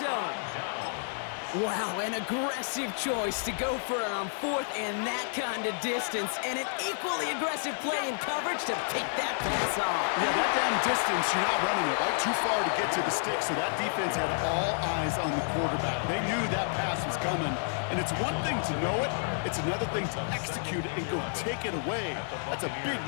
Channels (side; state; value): right; silent; 58 dB below the other